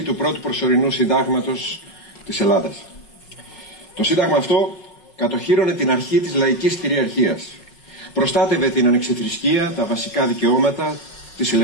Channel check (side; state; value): right; late; 5.3 ms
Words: του πρώτου προσωρινού συντάγματος της Ελλάδας. Το σύνταγμα αυτό κατοχύρωνε την αρχή της λαϊκής κυριαρχίας. Προστάτευε την ανεξιθρησκεία, τα βασικά δικαιώματα, τις